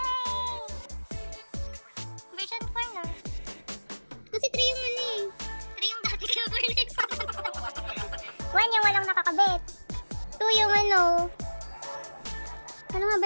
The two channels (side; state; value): both; inverted; correlation -1.00